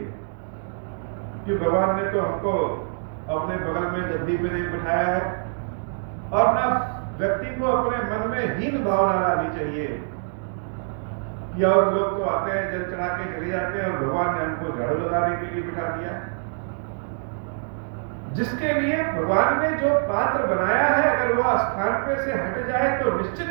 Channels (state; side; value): silent; left; 62 dB below the other